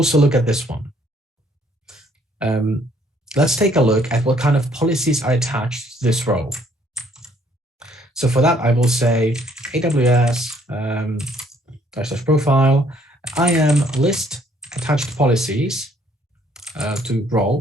look at this one. Let's take a look at what kind of policies are attached to this role. So for that, I will say AWS /profile. I am list attached policies to role.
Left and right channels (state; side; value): normal; both; correlation 0.64